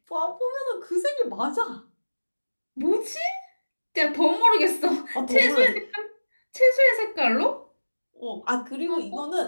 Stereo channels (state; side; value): inverted; both; correlation -1.00